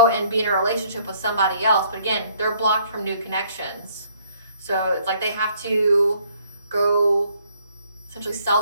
and be in a relationship with somebody else. But again, they're blocked from new connections. So it's like they have to go essentially sell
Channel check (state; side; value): inverted; both; correlation -0.63